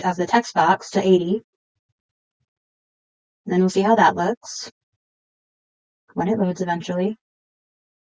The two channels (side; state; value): both; identical; correlation 1.00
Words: of the text box to 80. And then we'll see how that looks when it loads eventually.